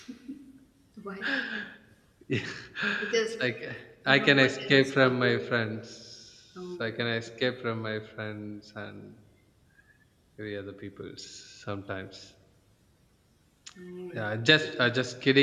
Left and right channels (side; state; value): both; identical; correlation 1.00